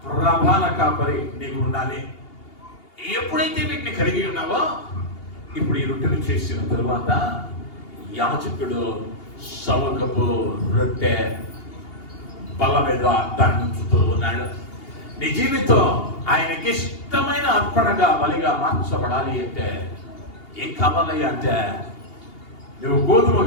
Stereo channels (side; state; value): right; late; 2.8 ms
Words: ప్రధాన కాపరి నీకు ఉండాలి. ఎప్పుడైతే వీటిని కలిగి ఉన్నావో, ఇప్పుడు ఈ రొట్టెను చేసిన తరువాత యాజకుడు సవకపు రొట్టె బల మీద దంచుతూ ఉన్నాడు. నీ జీవితం ఆయనకి ఇష్టమైన అర్పణగా బలిగా మార్చబడాలి అంటే ఏం కావాలి అంటే నువ్వు